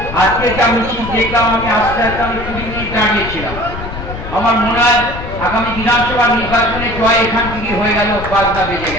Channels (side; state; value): left; noise; rumble, 9 dB below the sound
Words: আজকে যা মিছিল দেখলাম, আমি আস্তে আস্তে 20 মিনিট দাঁড়িয়েছিলাম। আমার মনে হয় আগামী বিধানসভা নির্বাচনে জয় এখান থেকে হয়ে গেল, বাজনা বেজে